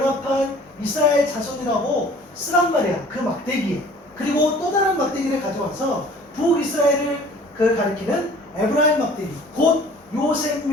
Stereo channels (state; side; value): normal; both; correlation 0.50